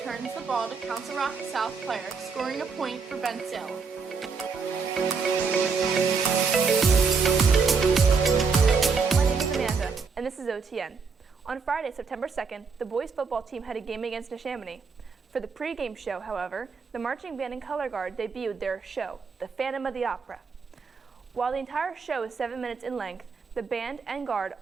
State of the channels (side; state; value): left; quieter; 5.2 dB